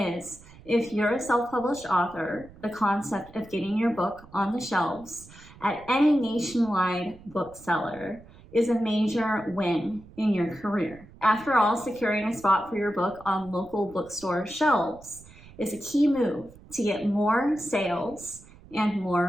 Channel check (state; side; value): noise; right; rumble, 21 dB below the sound